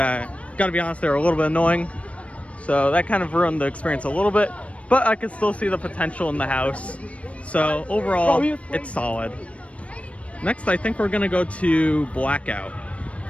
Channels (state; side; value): late; right; 0.064 ms